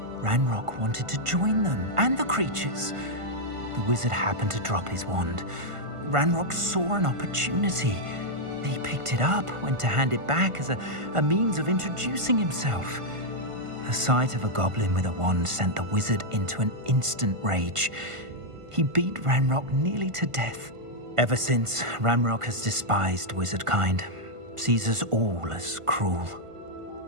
Ranrock wanted to join them, and the creatures. The wizard happened to drop his wand. Ranrock saw an opportunity. He picked it up, went to hand it back as a means of introducing himself. The sight of a goblin with a wand sent the wizard into an instant rage. He beat Ranrock nearly to death. Ever since, Ranrock has despised wizardkind, sees us all as cruel.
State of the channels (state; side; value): late; left; 1.5 ms